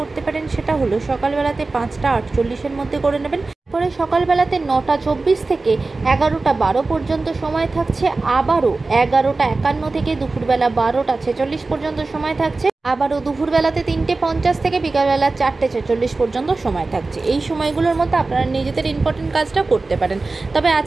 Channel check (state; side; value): quieter; left; 3.5 dB